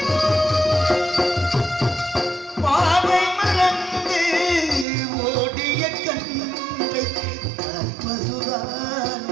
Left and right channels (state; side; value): drops out; left; at 4.9 s